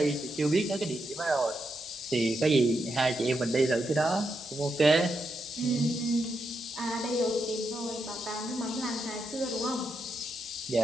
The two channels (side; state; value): both; normal; correlation 0.83